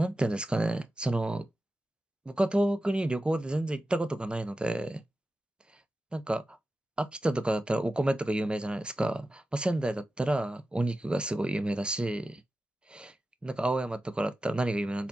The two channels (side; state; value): both; normal; correlation 0.93